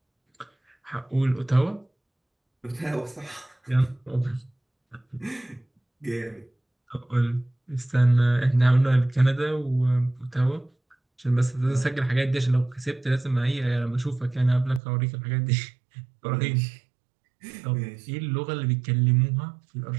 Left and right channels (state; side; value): drops out; left; at 14.8 s